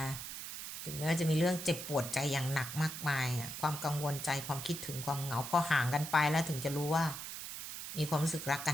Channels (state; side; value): noise; right; hiss, 8 dB below the sound